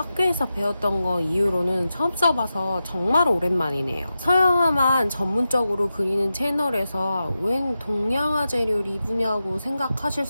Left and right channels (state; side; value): inverted; both; correlation -0.91